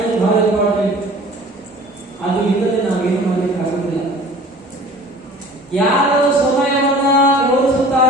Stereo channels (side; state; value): both; normal; correlation 0.44